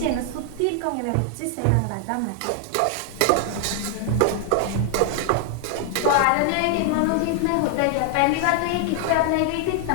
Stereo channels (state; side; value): different; both; correlation 0.00